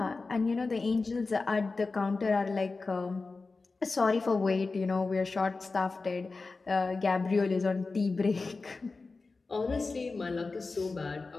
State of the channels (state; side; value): quieter; right; 3.9 dB